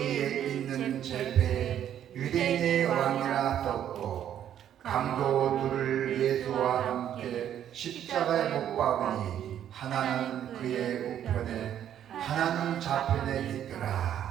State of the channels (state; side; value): quieter; left; 10.3 dB